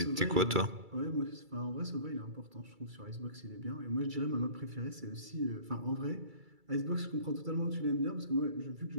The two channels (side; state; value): left; late; 2.3 ms